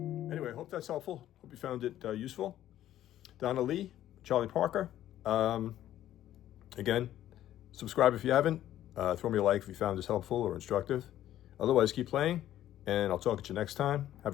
Anyway, hope that's helpful. Hope you found it useful. Donna Lee, Charlie Parker. Again, subscribe if you haven't. Throw me a like if you found this helpful or instructive. Otherwise, keep playing, and I'll talk at you next time. Have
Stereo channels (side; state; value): right; quieter; 12.5 dB